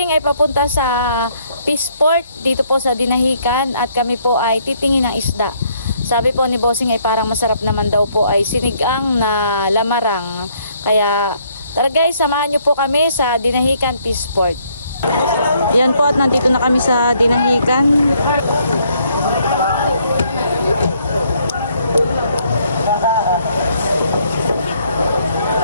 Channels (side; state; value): both; inverted; correlation -0.67